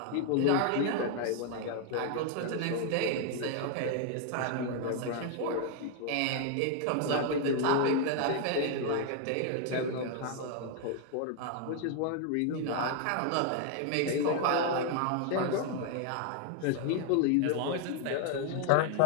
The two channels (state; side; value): different; both; correlation 0.00